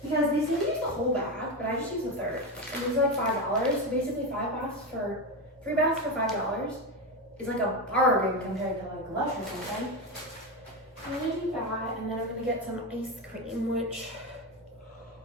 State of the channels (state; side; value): normal; both; correlation 0.15